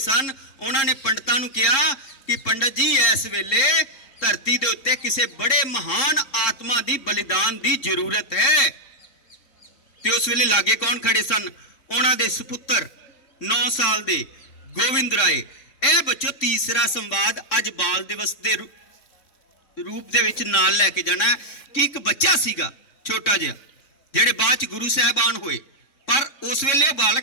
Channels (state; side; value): late; right; 3.7 ms